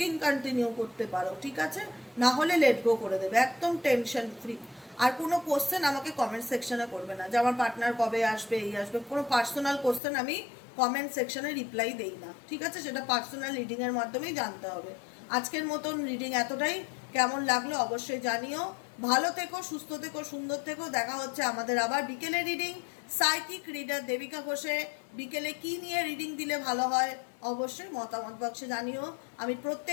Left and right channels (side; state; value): right; drops out; at 10.0 s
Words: কন্টিনিউ করতে পারো, ঠিক আছে? না হলে লেট গো করে দেবে, একদম টেনশন ফ্রি। আর কোনো কোশ্চেন আমাকে কমেন্ট সেকশনে করবে না যে আমার পার্টনার কবে আসবে, এই আসবে। কোনো পার্সোনাল কোশ্চেন আমি কমেন্ট সেকশনে রিপ্লাই দেই না, ঠিক আছে? সেটা পার্সোনাল রিডিংয়ের মাধ্যমেই জানতে হবে। আজকের মতন রিডিং এতটাই। কেমন লাগলো অবশ্যই জানিও। ভালো থেকো, সুস্থ থেকো, সুন্দর থেকো। দেখা হচ্ছে আমাদের আবার বিকেলে রিডিং। সাইকিক রিডার দেবিকা ঘোষে। বিকেলে কি নিয়ে রিডিং দিলে ভালো হয় অবশ্যই মতামত বক্সে জানিও। আমি